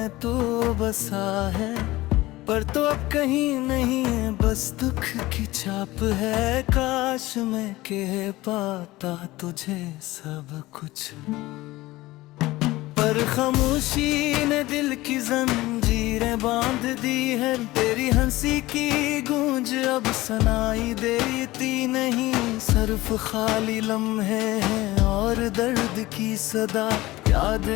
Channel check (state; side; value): quieter; right; 18.6 dB